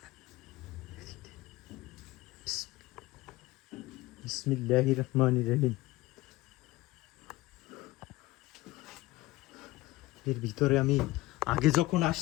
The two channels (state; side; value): quieter; right; 18.9 dB